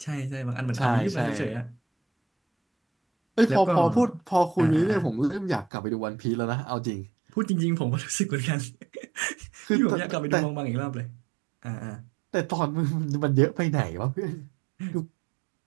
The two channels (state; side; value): drops out; left; at 5.7 s